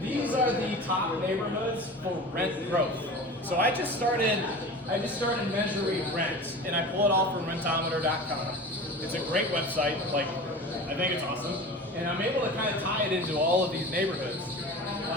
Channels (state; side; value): normal; both; correlation 0.35